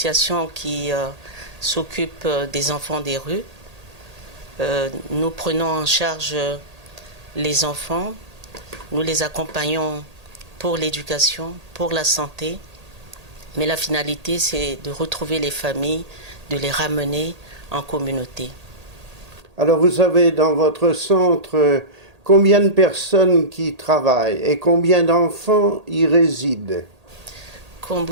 qui s'occupe des enfants des rues. Nous prenons en charge les enfants, nous les accompagnons pour l'éducation, pour la santé, mais la finalité c'est de retrouver les familles, de les ramener en communauté. Alors vous avez dans votre centre combien de personnes qui travaillent et combien d'enfants y résident? Comme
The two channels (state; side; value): late; left; 1.8 ms